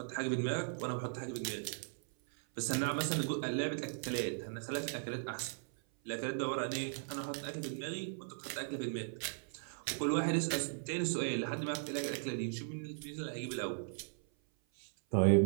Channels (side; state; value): left; silent; 53 dB below the other